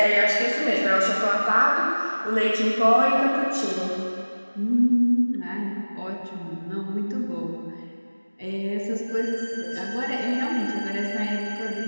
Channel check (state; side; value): inverted; both; correlation -1.00